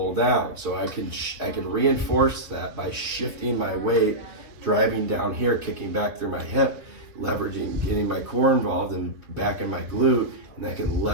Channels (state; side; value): late; left; 2.6 ms